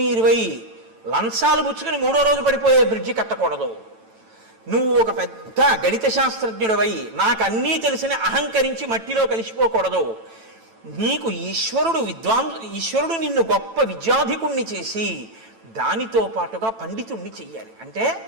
లంచాలు పుచ్చుకుని 3వ రోజు పడిపోయే బ్రిడ్జి కట్టకూడదు. నువ్వు ఒక పెద్ద గణిత శాస్త్రజ్ఞుడివై నాకు అన్నీ తెలిసిన అహంకరించి మట్టిలో కలిసిపోకూడదు. నీకు ఈశ్వరుడు నిన్ను గొప్ప విద్యాధికుణ్ణి చేసి దానితో పాటుగా పండితుణ్ణి చెయ్యాలి. అంటే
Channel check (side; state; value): left; late; 9.0 ms